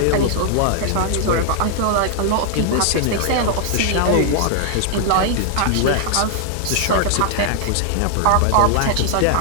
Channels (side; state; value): both; different; correlation 0.00